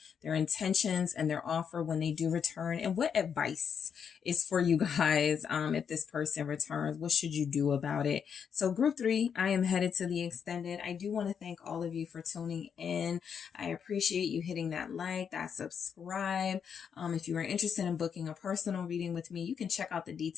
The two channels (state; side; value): quieter; right; 7.3 dB